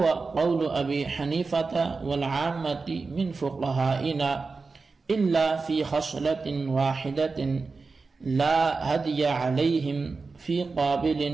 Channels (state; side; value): quieter; left; 4.3 dB